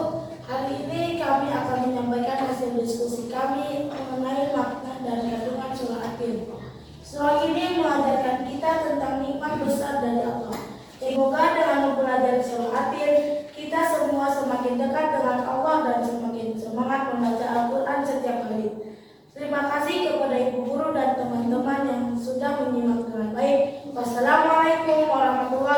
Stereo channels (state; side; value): identical; both; correlation 1.00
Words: Hari ini kami akan menyampaikan hasil diskusi kami mengenai makna dan kandungan surah At-Tin. Surah ini mengajarkan kita tentang nikmat besar dari Allah. Semoga dengan mempelajari surah At-Tin, kita semua semakin dekat dengan Allah dan semakin semangat membaca Al-Quran setiap hari. Terima kasih kepada ibu guru dan teman-teman yang sudah menyimak dengan baik. Wassalamualaikum